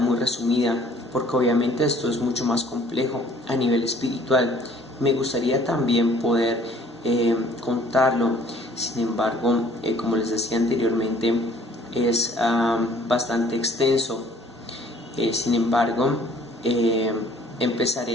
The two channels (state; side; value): normal; both; correlation 0.56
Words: resumida, porque obviamente esto es mucho más complejo a nivel espiritual. Me gustaría también poder contarlo, sin embargo, como les decía anteriormente, es bastante extenso. Sin embargo,